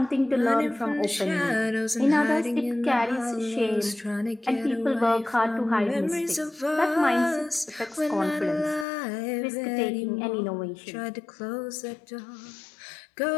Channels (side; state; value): right; drops out; at 8.8 s